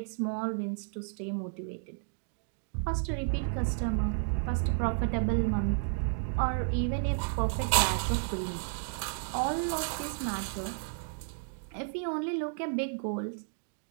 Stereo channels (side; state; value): left; silent; digital silence